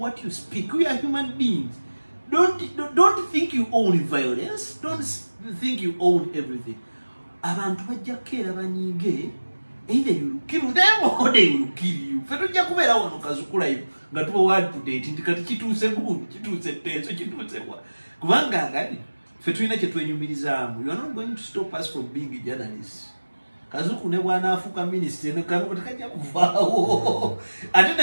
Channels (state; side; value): inverted; both; correlation -1.00